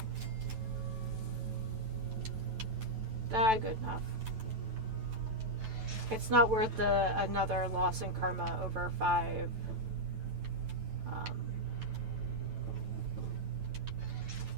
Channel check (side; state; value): left; late; 9.1 ms